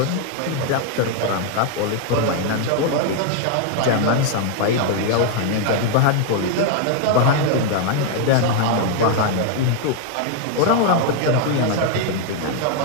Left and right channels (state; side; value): different; both; correlation 0.00